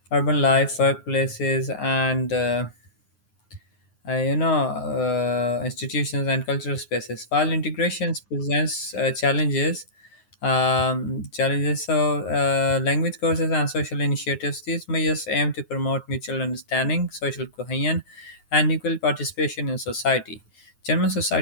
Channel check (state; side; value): late; right; 9.4 ms